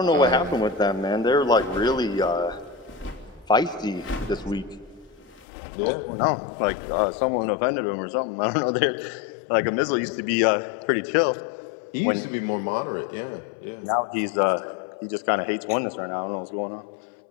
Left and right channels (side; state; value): right; drops out; at 5.5 s